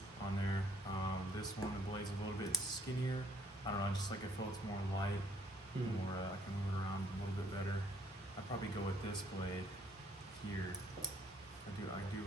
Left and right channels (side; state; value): both; normal; correlation 0.64